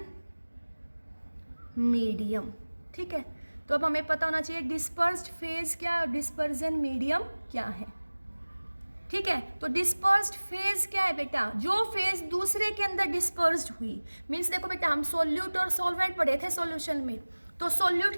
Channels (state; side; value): inverted; both; correlation -1.00